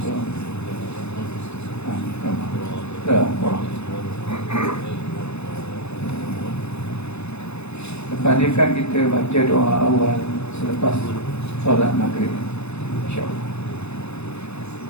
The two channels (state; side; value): late; right; 0.81 ms